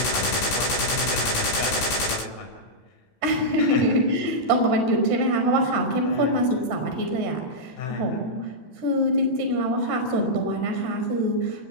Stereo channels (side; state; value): right; late; 16 ms